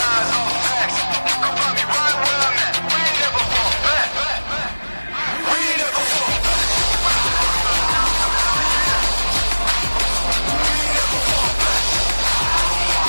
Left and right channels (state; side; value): inverted; both; correlation -1.00